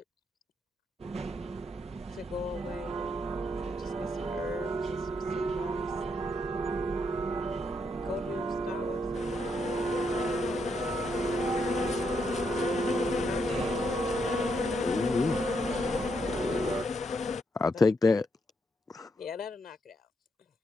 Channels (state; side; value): normal; both; correlation 0.78